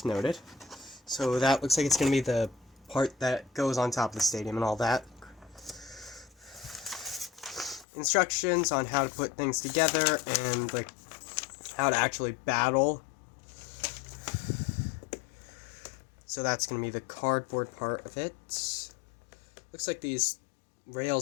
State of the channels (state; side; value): drops out; right; at 7.9 s